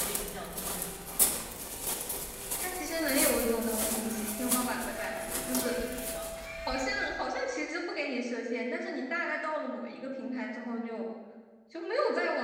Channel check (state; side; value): identical; both; correlation 1.00